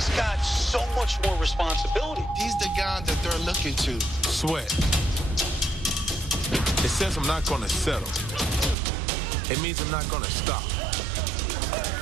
got so much more responsibility. He's the guy that they're looking to. Sweat. It says I'm not going to settle. It means I'm not going to stop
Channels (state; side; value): drops out; left; at 8.8 s